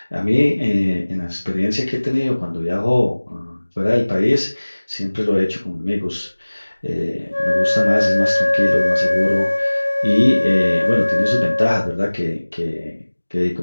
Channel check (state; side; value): inverted; both; correlation -1.00